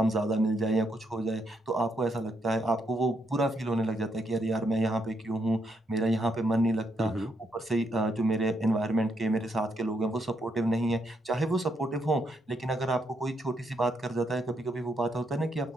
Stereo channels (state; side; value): normal; both; correlation 0.77